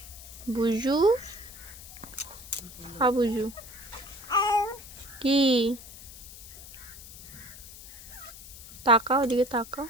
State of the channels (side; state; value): left; noise; hiss, 15 dB below the sound